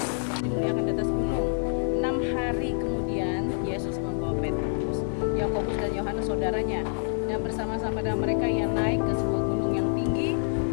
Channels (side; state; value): right; silent; digital silence